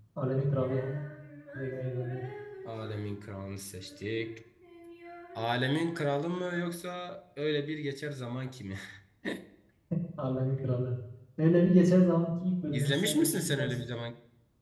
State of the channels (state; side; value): identical; both; correlation 1.00